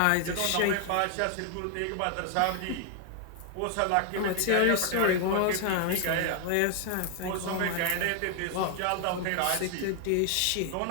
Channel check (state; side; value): different; both; correlation 0.00